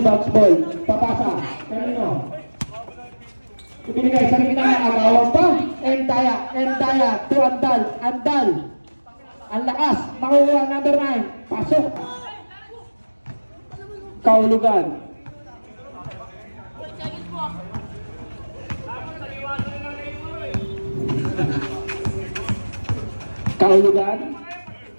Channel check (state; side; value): inverted; both; correlation -1.00